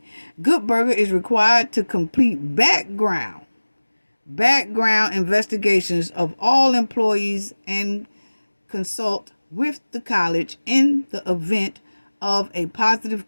Good Burger is required to complete background investigations of all employees and consult with the college in the event of a positive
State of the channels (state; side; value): inverted; both; correlation -1.00